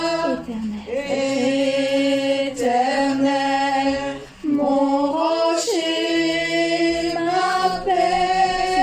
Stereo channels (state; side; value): identical; both; correlation 1.00